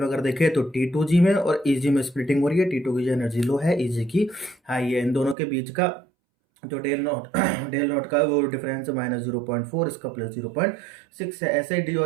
अगर देखें तो T2G में और EG में स्प्लिटिंग हो रही है। T2 की एनर्जी लो है, EG की हाई है। इन दोनों के बीच का जो डेल नॉट डेल नॉट का वो डिफरेंस -0.4, इसका +0.6 है। ऐसे डी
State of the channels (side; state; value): left; drops out; at 5.4 s